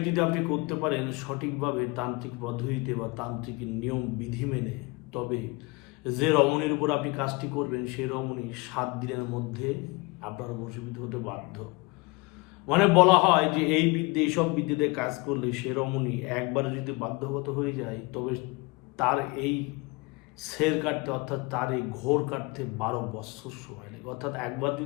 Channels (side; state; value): right; quieter; 25.5 dB